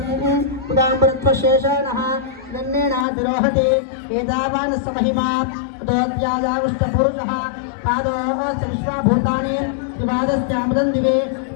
उदाम्बरत्वशेषाणः गण्येनातिरोहति एतावानस्य महिमा ततोऽध्यायाविष्टपुरुषः पादोऽस्य विश्वाभूतानि त्रिपादस्यामृतं दिवे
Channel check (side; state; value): right; drops out; at 3.1 s